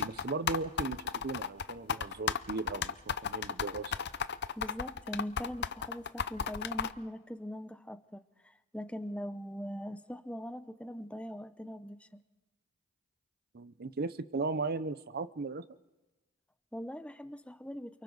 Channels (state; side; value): normal; both; correlation 0.06